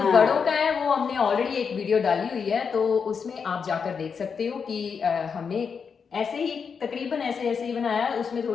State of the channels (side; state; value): right; quieter; 6.1 dB